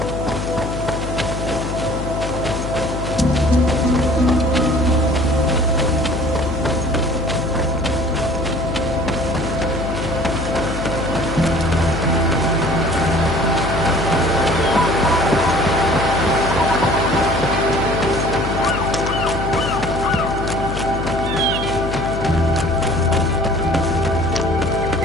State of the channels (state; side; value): noise; left; hum, 5 dB below the sound